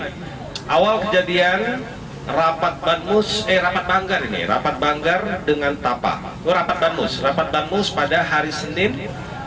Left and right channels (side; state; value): both; identical; correlation 1.00